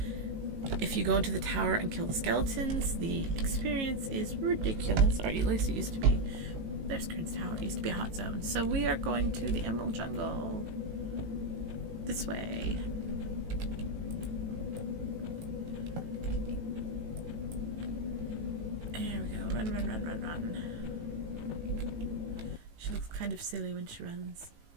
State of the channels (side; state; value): left; late; 18 ms